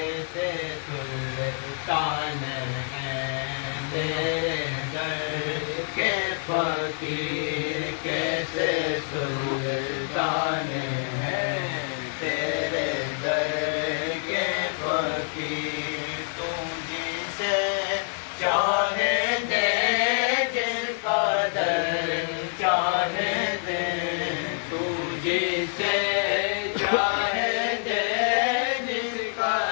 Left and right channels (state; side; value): silent; right; 60 dB below the other